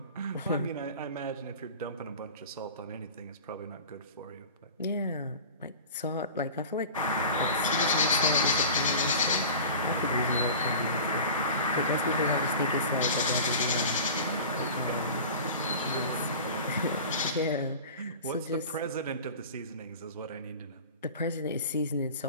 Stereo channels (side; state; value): both; inverted; correlation -0.36